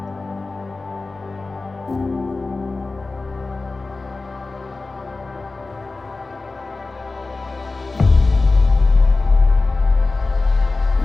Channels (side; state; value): right; quieter; 3.6 dB